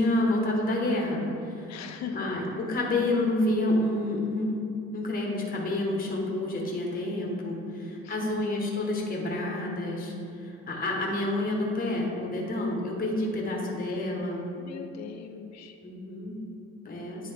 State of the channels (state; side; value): normal; both; correlation 0.52